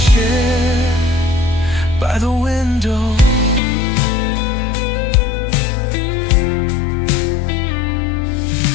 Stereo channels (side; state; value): right; drops out; at 3.6 s